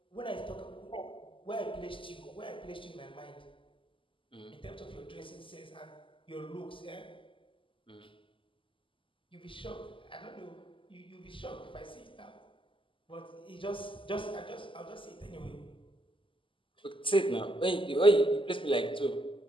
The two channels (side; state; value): right; late; 0.25 ms